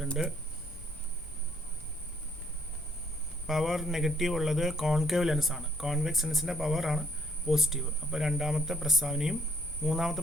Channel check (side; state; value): both; normal; correlation 0.67